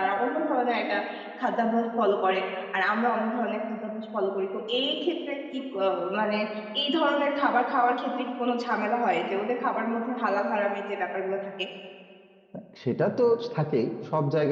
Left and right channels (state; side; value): identical; both; correlation 1.00